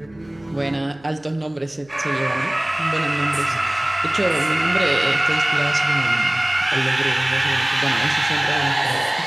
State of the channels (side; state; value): right; noise; hum, 28 dB below the sound